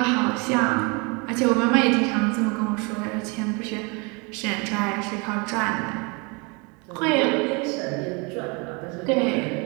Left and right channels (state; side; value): quieter; left; 30.4 dB